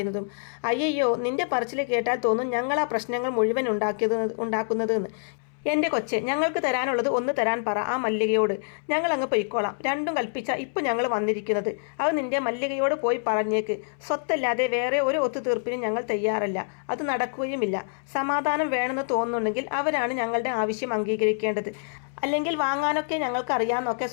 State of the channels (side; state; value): right; silent; 61 dB below the other